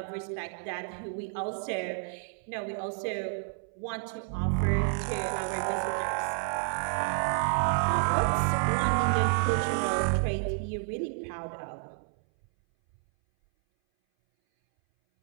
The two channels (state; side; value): silent; left; 58 dB below the other